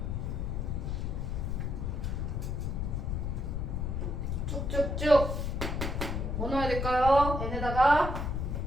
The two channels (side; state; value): left; noise; rumble, 1 dB below the sound